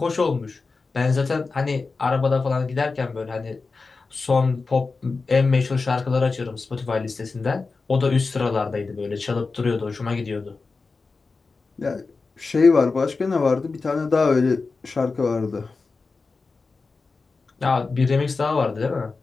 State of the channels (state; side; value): quieter; right; 4.2 dB